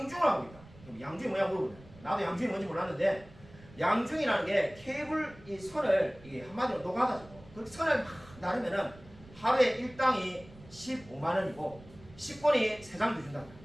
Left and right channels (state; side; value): noise; right; rumble, 21 dB below the sound